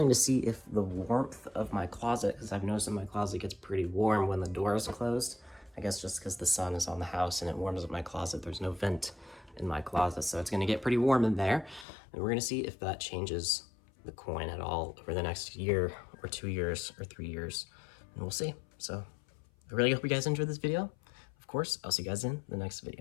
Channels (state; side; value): drops out; right; at 11.9 s